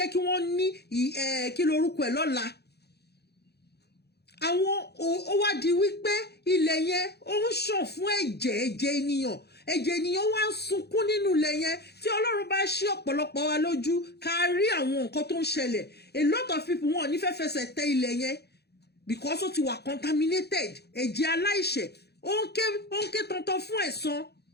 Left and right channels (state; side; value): late; right; 0.48 ms